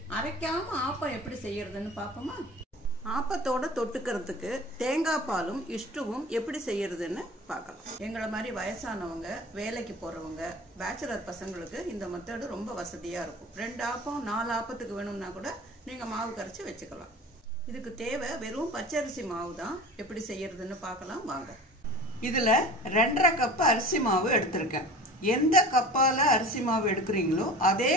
அரைக்காம ஆப்பம் எப்படி செய்யறதுன்னு பார்ப்போமா? ஆப்பத்தோட தொட்டுக்கிறதுக்கு தேங்காய் பாலும் இஷ்டுவும் எப்படி செய்யறதுன்னு பார்க்கலாம். எங்களை மாதிரி வயசானவங்க, வேலைக்கு போறவங்க, பேச்சுலர் பசங்களுக்கு இந்த மெத்தடு ரொம்ப வசதியா இருக்கும். 2 ஆப்பம் 4 ஆப்பத்துக்கு வேணும்னா கூட நீங்க மாவு கரைச்சி வச்சுக்கலாம். இதுக்கு தேவை வெறும் பச்சரிசி மாவு தான். எப்படி செய்யறதுன்னு பார்க்கலாம் வாங்க. இதுல 2.5 கப் அரிசி மாவு எடுத்திருக்கேன். எந்த கப்பால அரிசி மாவு எடுக்கிறீங்களோ அதே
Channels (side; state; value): both; normal; correlation 0.39